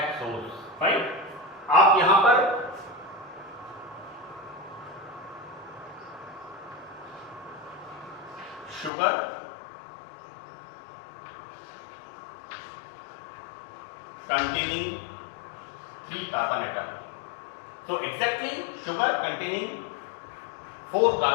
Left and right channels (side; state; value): right; drops out; at 8.9 s